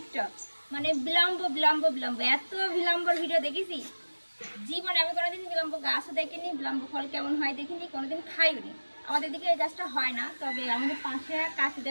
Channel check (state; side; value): inverted; both; correlation -1.00